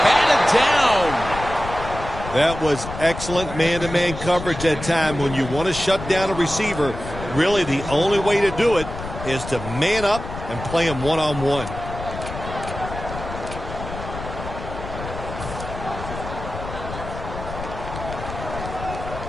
down. That was excellent man-to-man coverage that time. When you want to shut down a receiver, really the only way to do it is to man up and play him one-on-one.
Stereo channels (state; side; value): noise; left; rumble, 9 dB below the sound